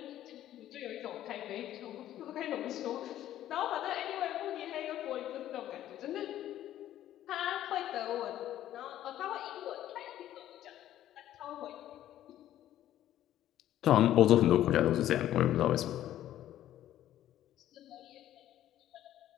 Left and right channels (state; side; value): quieter; right; 12.5 dB